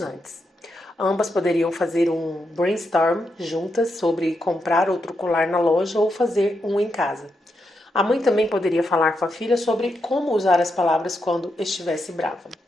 antes. Ambas poderiam fazer um brainstorm juntas sobre comprar outro colar na loja ou fazer um em casa. A mãe também poderia falar com a filha sobre como usar as palavras quando estivesse brava.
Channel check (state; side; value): normal; both; correlation 0.83